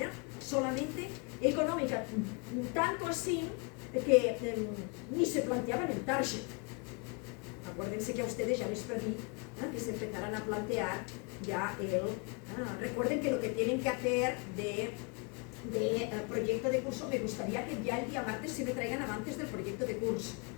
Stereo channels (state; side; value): quieter; right; 32.5 dB